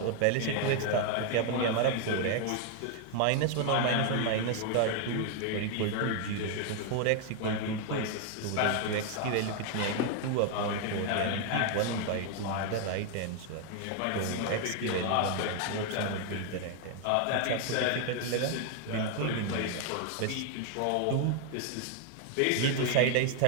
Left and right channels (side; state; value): both; different; correlation 0.00